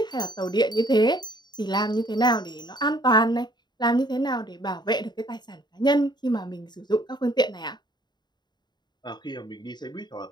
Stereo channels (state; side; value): late; right; 0.21 ms